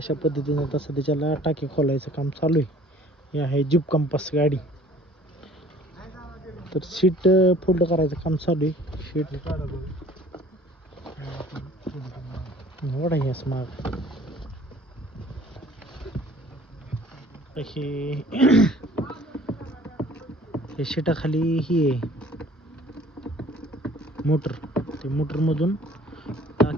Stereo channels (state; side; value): normal; both; correlation 0.52